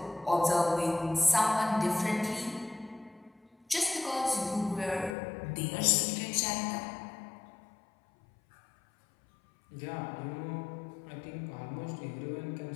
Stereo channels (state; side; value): drops out; right; at 5.2 s